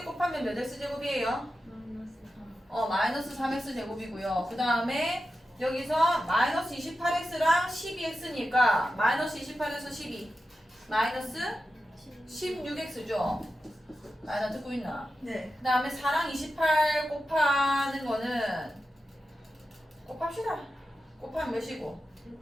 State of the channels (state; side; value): normal; both; correlation 0.91